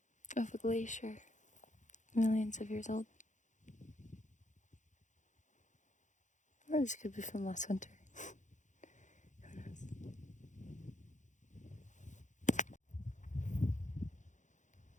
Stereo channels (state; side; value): late; right; 0.35 ms